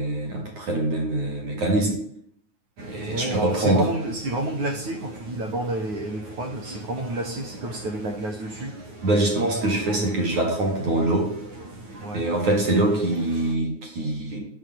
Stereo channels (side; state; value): left; late; 9.4 ms